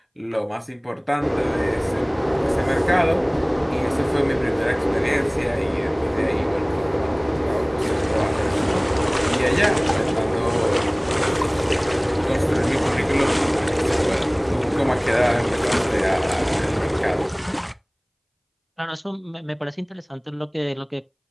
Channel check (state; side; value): identical; both; correlation 1.00